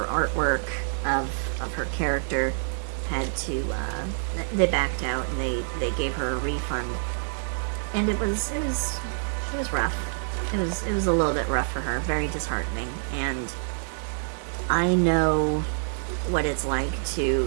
artwork of her character had to, they backed out and they gave her a refund. And it was rough. It was a little bit rough for her, very disheartening. And I know what it's like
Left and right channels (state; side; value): silent; left; digital silence